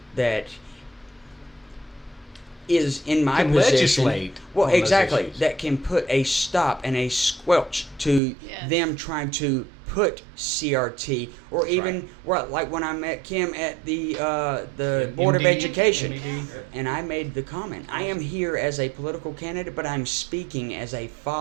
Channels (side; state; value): left; drops out; at 8.2 s